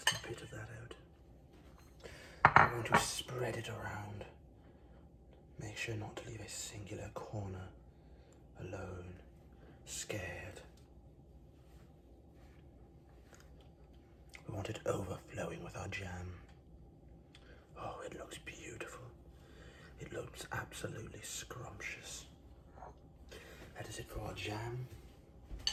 bit of that out. I'm going to spread it around. Make sure not to leave a singular corner alone, scared. We want it overflowing with our jam. Oh, it looks beautiful. It looks absolutely scrumptious. That is it for our jam.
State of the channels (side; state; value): both; identical; correlation 1.00